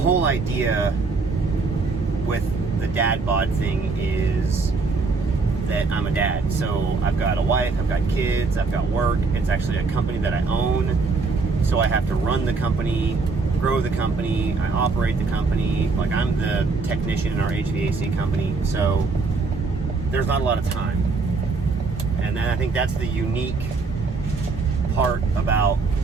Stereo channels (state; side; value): quieter; left; 4.1 dB